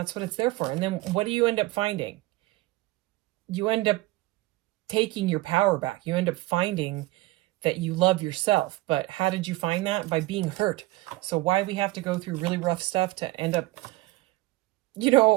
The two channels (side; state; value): left; quieter; 19.3 dB